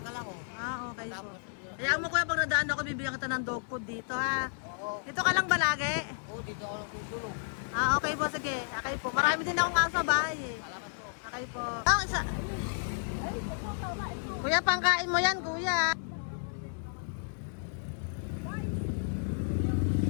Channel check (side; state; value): right; silent; digital silence